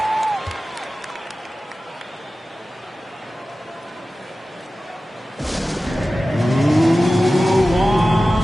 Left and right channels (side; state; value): both; normal; correlation 0.95